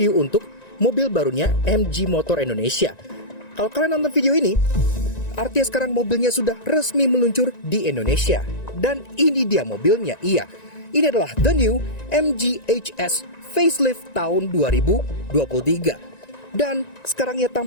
untuk mobil barunya MG Motor Indonesia. Kalau kalian nonton video ini, artinya sekarang mobilnya sudah resmi meluncur di Indonesia. Dan ini dia mobilnya, iya. Ini adalah the new MG HS facelift tahun 2023. Dan sekarang ia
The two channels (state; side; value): late; right; 1.9 ms